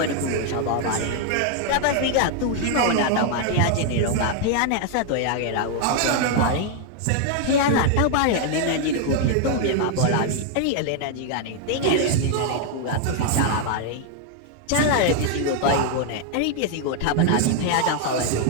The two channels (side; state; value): both; different; correlation 0.00